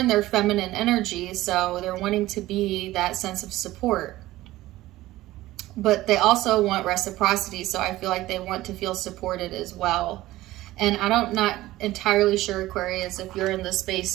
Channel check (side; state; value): left; quieter; 16.6 dB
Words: their feminine energy, so they're wanting to be that sense of support. But they also want reciprocity, so I feel like they want to feel supported as well. And I'm not entirely sure, Aquarius, if you're in the